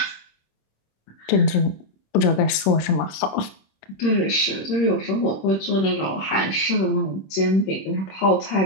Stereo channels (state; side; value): late; right; 26 ms